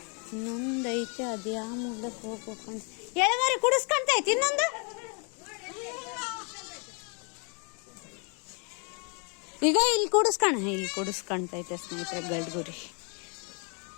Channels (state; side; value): quieter; right; 36.1 dB